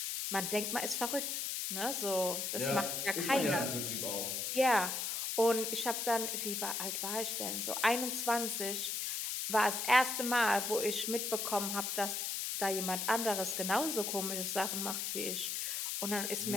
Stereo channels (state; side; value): noise; left; hiss, 1 dB below the sound